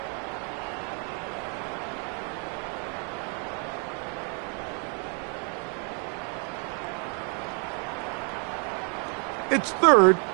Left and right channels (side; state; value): left; quieter; 38.3 dB